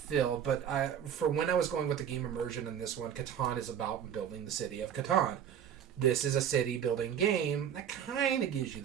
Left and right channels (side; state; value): left; quieter; 9.0 dB